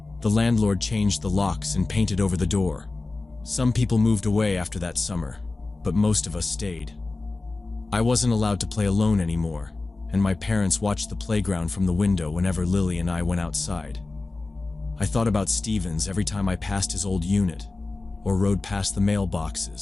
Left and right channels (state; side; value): quieter; right; 3.4 dB